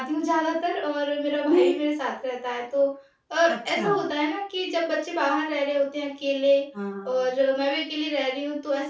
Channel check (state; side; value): identical; both; correlation 1.00